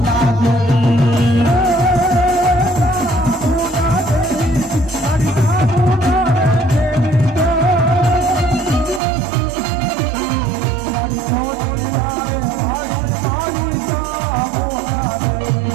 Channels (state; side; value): drops out; left; at 9.0 s